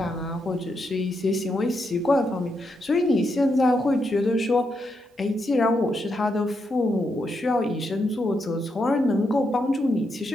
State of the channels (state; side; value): normal; both; correlation 0.82